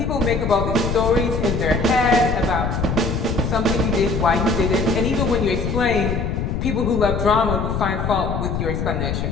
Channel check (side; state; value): left; noise; rumble, 2 dB below the sound